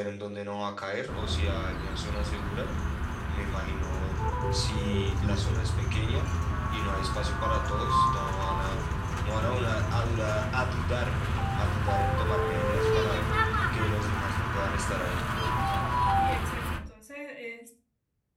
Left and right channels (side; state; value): both; identical; correlation 1.00